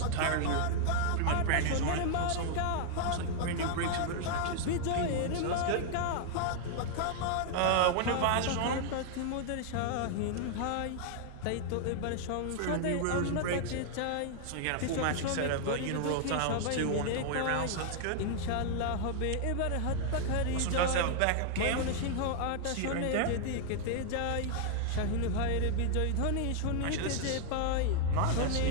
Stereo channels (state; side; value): different; both; correlation 0.00